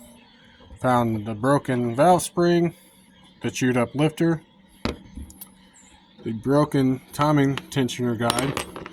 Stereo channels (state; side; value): identical; both; correlation 1.00